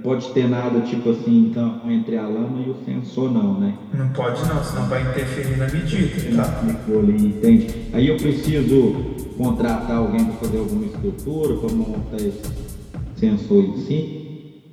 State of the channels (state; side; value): identical; both; correlation 1.00